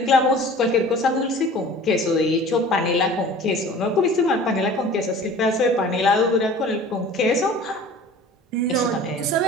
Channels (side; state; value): both; normal; correlation 0.44